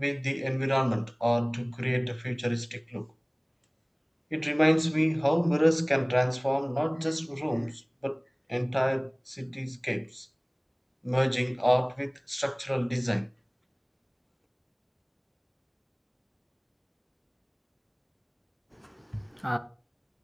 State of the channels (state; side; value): identical; both; correlation 1.00